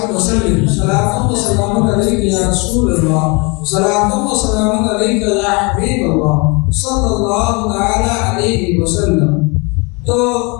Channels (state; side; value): quieter; right; 29.7 dB